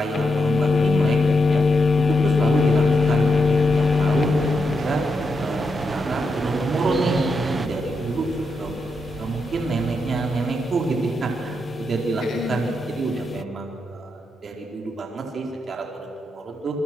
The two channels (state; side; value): normal; both; correlation 0.83